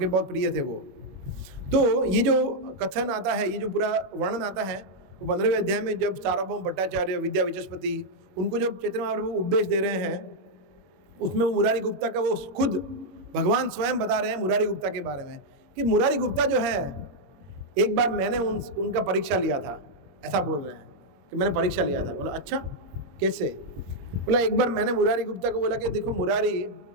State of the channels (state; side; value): late; left; 21 ms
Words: बहुत प्रिय थे वो। तो ये जो कथन आता है, ये जो पूरा वर्णन आता है, वो 15वें अध्याय में जब सार्वभौम भट्टाचार्य, विद्या विचस्पति, उनको जब चैतन्य महाप्रभु उपदेश दे रहे हैं, उसमें वो मुरारी गुप्ता का, वो खुद भगवान स्वयं बता रहे हैं मुरारी गुप्ता के बारे में कि मुरारी गुप्ता जो है, एक बार मैंने उनका परीक्षा लिया था, ऐसा बोल रहे हैं कि मैंने परीक्षा लिया था। बोला अच्छा कैसे? बोला एक बार मैंने मुरारी गुप्ता को बोला कि देखो मुरारी,